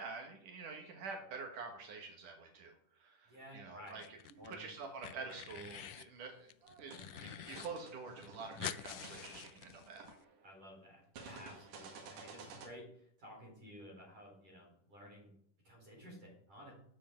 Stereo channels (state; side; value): late; left; 10 ms